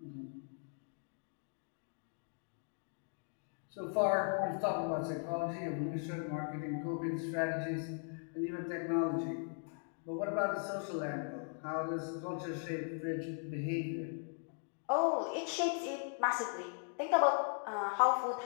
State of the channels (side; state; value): right; silent; 52 dB below the other